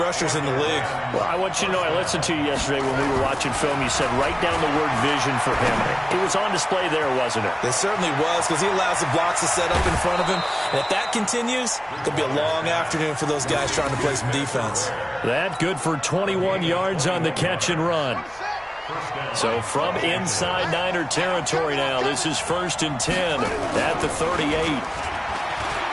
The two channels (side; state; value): right; noise; hum, 28 dB below the sound